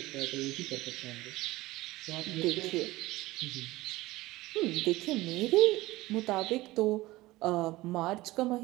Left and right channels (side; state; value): left; quieter; 18.8 dB